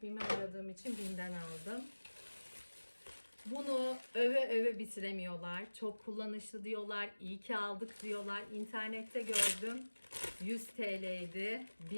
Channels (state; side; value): inverted; both; correlation -1.00